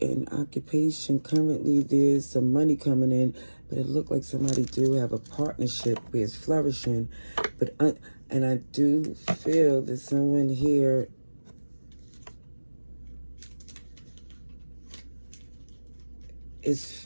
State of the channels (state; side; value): inverted; both; correlation -1.00